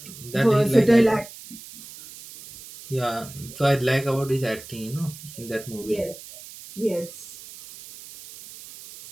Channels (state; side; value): noise; right; hiss, 16 dB below the sound